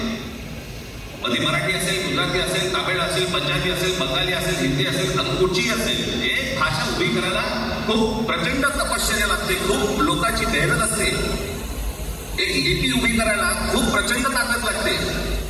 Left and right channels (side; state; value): both; identical; correlation 1.00